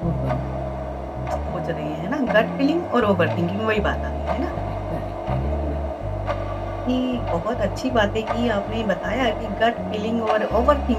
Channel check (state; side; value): identical; both; correlation 1.00